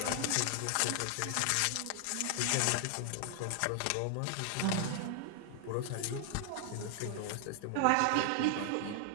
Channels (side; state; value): both; different; correlation 0.00